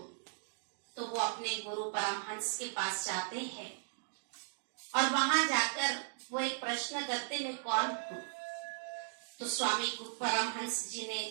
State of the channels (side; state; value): left; silent; digital silence